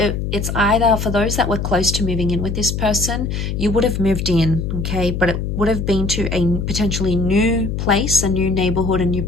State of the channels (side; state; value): left; noise; hum, 3 dB below the sound